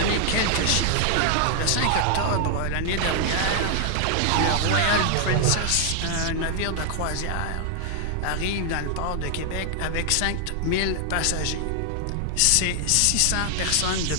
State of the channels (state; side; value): different; both; correlation 0.00